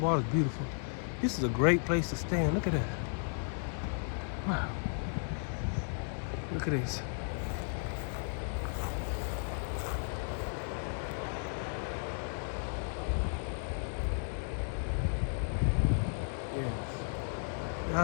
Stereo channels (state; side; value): silent; right; 55 dB below the other